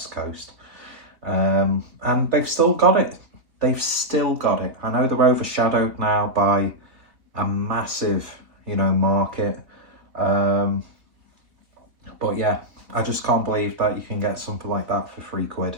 Coast. And they've still got it. I know they're overshadowed now by a massive, market. But yeah, I just can't believe that you can get something like that for £3,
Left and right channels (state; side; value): late; left; 3.3 ms